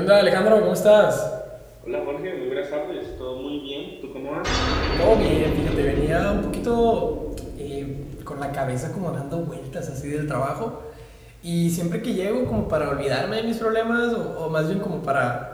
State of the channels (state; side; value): identical; both; correlation 1.00